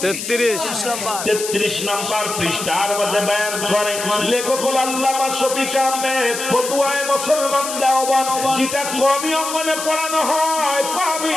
33 নম্বর পৃষ্ঠার মধ্যে বয়ান করে লেখক আল্লামা শফিক আহমেদ, ফতুয়ায়ে মুসলমান দাওয়াত, যেটা কওমি অঙ্গনে পড়ানো হয়, কওমি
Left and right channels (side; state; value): left; noise; hiss, 6 dB below the sound